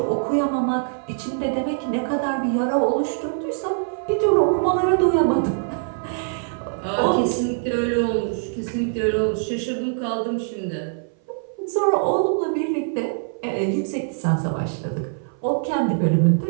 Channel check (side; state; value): left; silent; 59 dB below the other